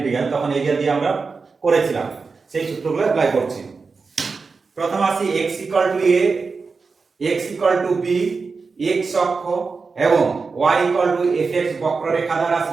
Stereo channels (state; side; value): quieter; left; 4.6 dB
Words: তখন এরিয়া দিয়ে আমরা করেছিলাম, সেই সূত্রগুলো অ্যাপ্লাই করছি। প্রথম আসি x = a, x = b, x অক্ষ এবং y = fx বক্ররেখা দ্বারা